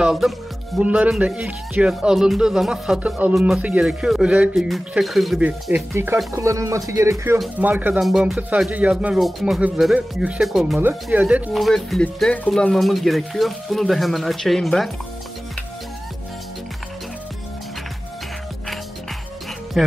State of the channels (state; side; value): normal; both; correlation 0.97